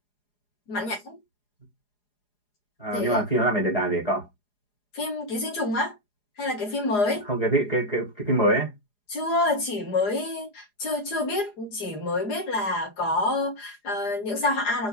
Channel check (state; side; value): late; right; 4.8 ms